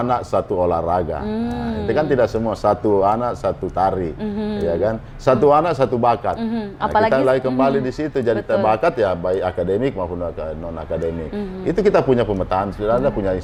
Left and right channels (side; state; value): both; identical; correlation 1.00